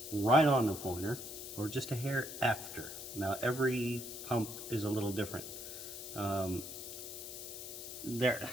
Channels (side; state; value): left; noise; hiss, 9 dB below the sound